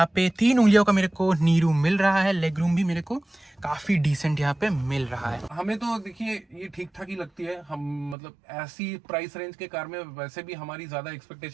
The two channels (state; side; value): drops out; left; at 8.2 s